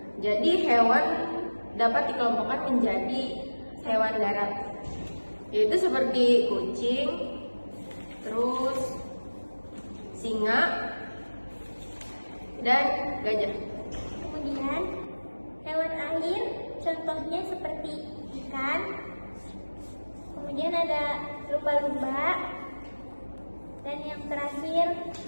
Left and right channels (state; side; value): inverted; both; correlation -1.00